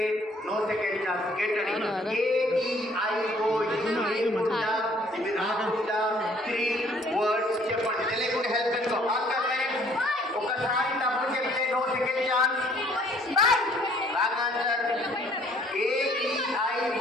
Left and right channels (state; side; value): normal; both; correlation 0.60